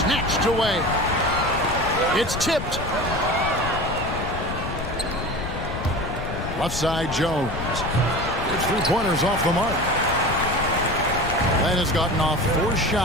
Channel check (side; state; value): left; noise; rumble, 6 dB below the sound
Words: away. It's tipped. Left side, Jones. His three-pointers off the mark. Len has gotten off 4